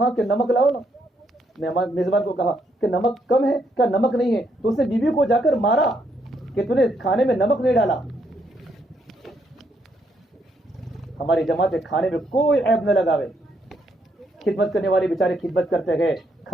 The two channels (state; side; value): normal; both; correlation 0.75